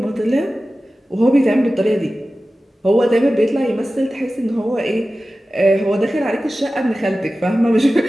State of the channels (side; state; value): both; normal; correlation 0.95